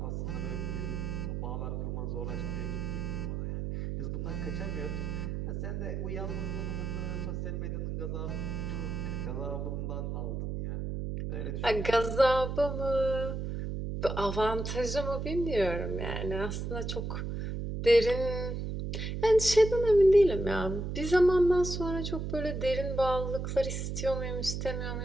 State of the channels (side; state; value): right; noise; hum, 3 dB below the sound